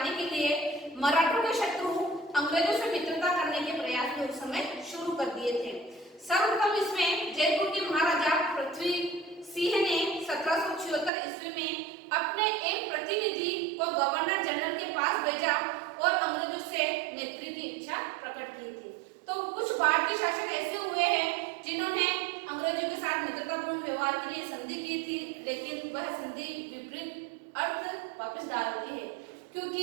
के लिए मराठों के शत्रु अंग्रेजों से मित्रता करने के प्रयास भी उस समय शुरू कर दिए थे। सर्वप्रथम इसमें जयपुर के महाराजा पृथ्वी सिंह ने 1776 ईस्वी में अपने एक प्रतिनिधि को गवर्नर जनरल के पास भेजा और अंग्रेजों से मैत्री की इच्छा प्रकट की थी। तो कुछ भारतीय शासक ऐसे हुए हैं जिन्होंने अंग्रेजों के साथ मित्रतापूर्ण व्यवहार के लिए संधि की थी, लेकिन वह संधि विपरीत अर्थ वापस डाल दी है,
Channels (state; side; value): drops out; left; at 11.1 s